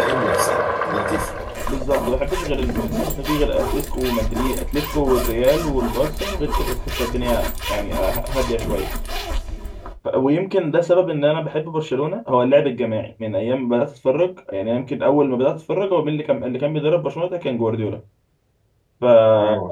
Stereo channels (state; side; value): identical; both; correlation 1.00